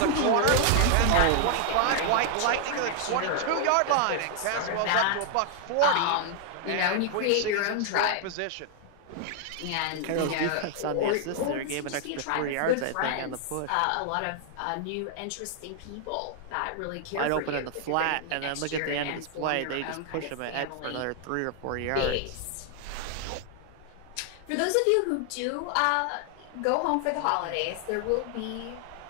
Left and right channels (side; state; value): both; different; correlation 0.00